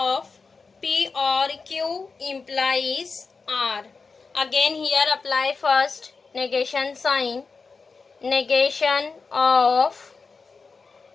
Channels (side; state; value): right; quieter; 4.6 dB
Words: P or Q implies R. Again here apply first negation sign. Negation of